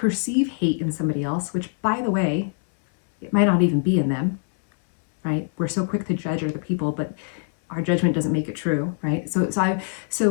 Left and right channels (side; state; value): right; silent; 62 dB below the other